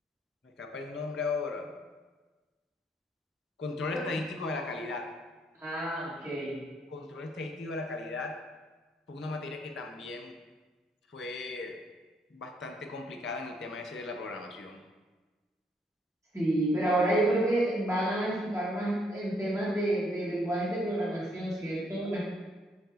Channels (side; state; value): both; normal; correlation 0.70